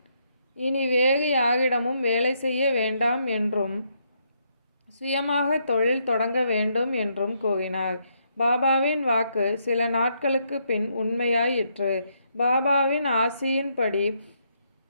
இனி வேறு யாரிடமும் வேலை செய்ய வேண்டாம் என்றும் சுயமாக தொழில் தொடங்க வேண்டும் என்றும் கூறினார். பாபாவின் வாக்கு சில நாட்களுக்கு பின் உண்மையாயிற்று. பாபாவின் ஆசியின்படி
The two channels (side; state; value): both; inverted; correlation -0.76